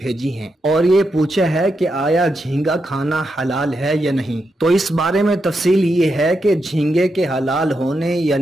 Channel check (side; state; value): both; normal; correlation 0.84